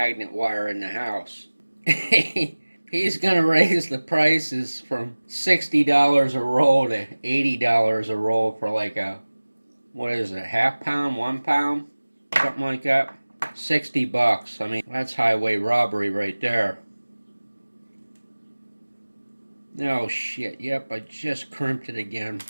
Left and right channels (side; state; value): both; inverted; correlation -1.00